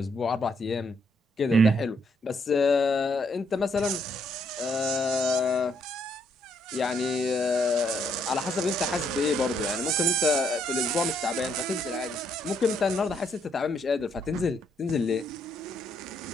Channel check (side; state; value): both; normal; correlation 0.72